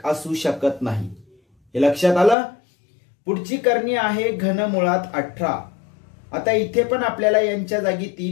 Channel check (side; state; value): right; drops out; at 2.4 s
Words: असू शकत नाही. हे लक्षात आलं. पुढची करणी आहे घनमुळात 18. आता इथे पण आपल्याला यांच्या जागी